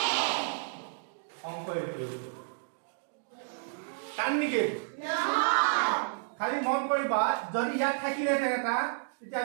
অংক এইটো টান নেকি খালি মন কৰিবা যদি ইয়াত থাকিলে এটা তেতিয়া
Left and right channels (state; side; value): silent; left; digital silence